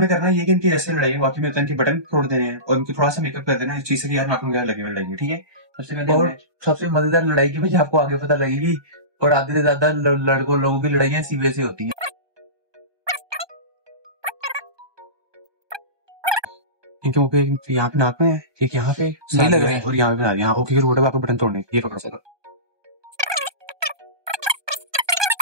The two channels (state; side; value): late; left; 1.2 ms